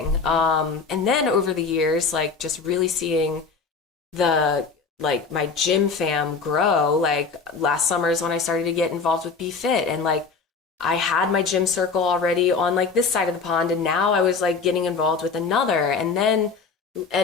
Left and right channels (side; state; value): right; quieter; 4.9 dB